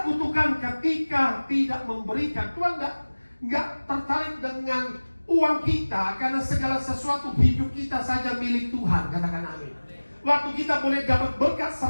kutukan ketika tidak memberikan. Tuhan nggak tertarik dengan uang kita, karena segala sesuatu hidup kita saja milik Tuhan. Katakan amin. Waktu kita boleh dapat berkat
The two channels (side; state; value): both; inverted; correlation -1.00